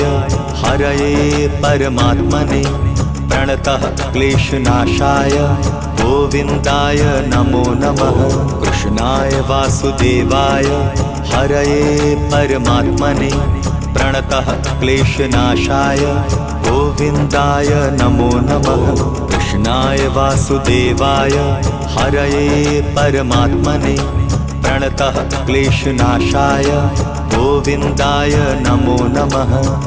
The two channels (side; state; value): both; identical; correlation 1.00